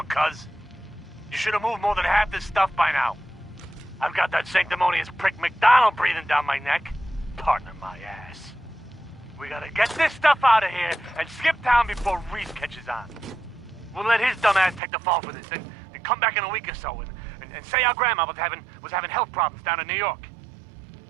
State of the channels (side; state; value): left; drops out; at 14.8 s